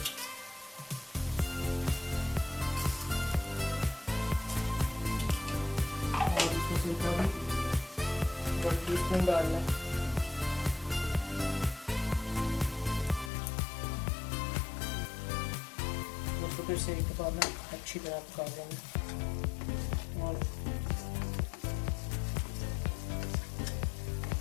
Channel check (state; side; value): drops out; right; at 13.3 s